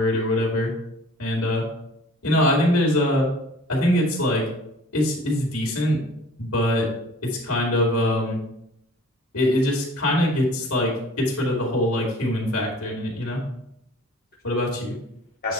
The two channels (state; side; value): normal; both; correlation 0.48